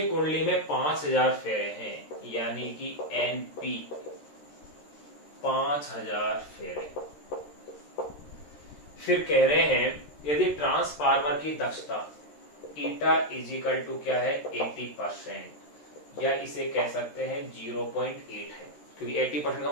कुंडली में 5000 फेरे हैं यानी कि एनपी 5000 फेरे। फिर कह रहे हैं यदि ट्रांसफार्मर की दक्षता ईटा इजिकल टू क्या है 80%, या इसे कह सकते हैं 0.8 है, क्योंकि 80% का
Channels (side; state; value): right; late; 13 ms